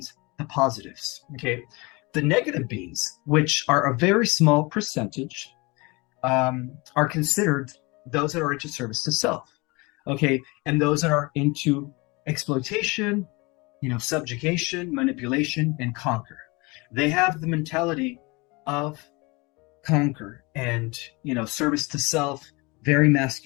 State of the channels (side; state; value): right; quieter; 26.0 dB